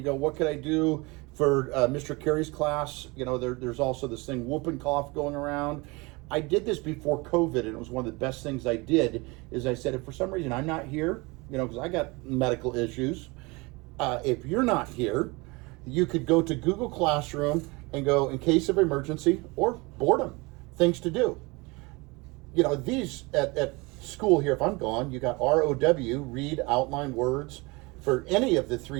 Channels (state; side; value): quieter; left; 25.6 dB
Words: what could I do for Mr. Carey's class? You know, there's also this thing, whooping cough going around. I did this before COVID, and it was one of the best things I did, is I said, if for some reason I'm not here, you know, because I got medical issues, if you're not here, you could go to Google Classroom and go, in case of emergency or boredom, things to do. You know, these at school here, if I'm gone, you got ROW, read, outline words, for any of the